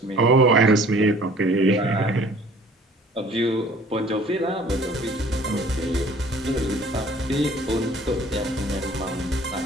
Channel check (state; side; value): normal; both; correlation 0.52